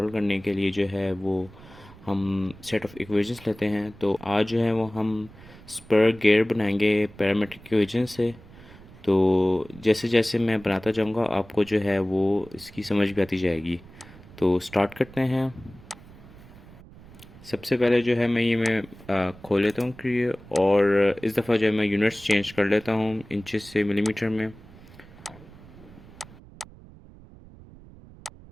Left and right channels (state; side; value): noise; right; rumble, 20 dB below the sound